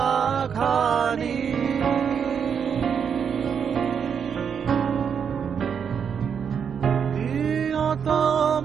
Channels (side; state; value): left; quieter; 7.2 dB